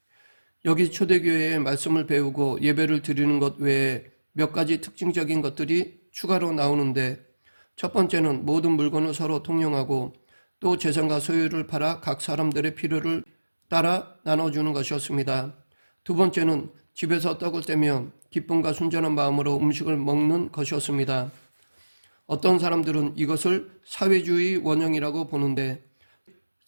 여기 초대교회의 말씀을 배우고 예배를 드리는 것 외에 몇 가지 특징적인 것들이 추가로 나오는데 첫 번째는 모든 물건을 서로 통용하고 또 재산과 소유를 팔아 각 사람들의 필요를 따라 나눠주는 것이었습니다. 두 번째는 집에서 떡을 떼며 기쁨과 순전한 마음으로 음식을 먹는 것이었습니다. 어떤 사람들은 이것을 사회주의 원형이라고 보는데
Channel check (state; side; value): inverted; both; correlation -1.00